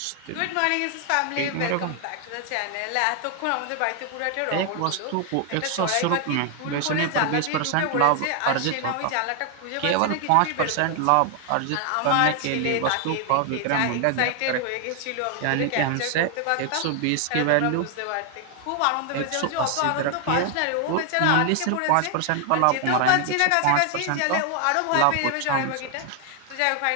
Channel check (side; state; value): both; different; correlation 0.00